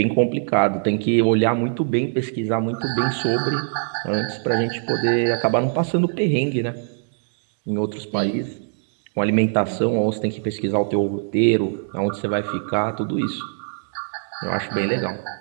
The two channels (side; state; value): left; silent; digital silence